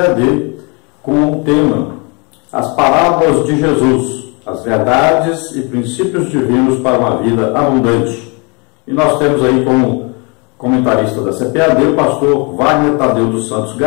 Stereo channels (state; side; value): quieter; right; 31.8 dB